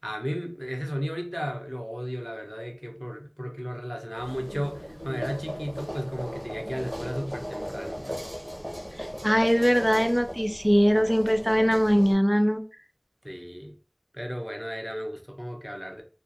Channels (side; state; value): both; identical; correlation 1.00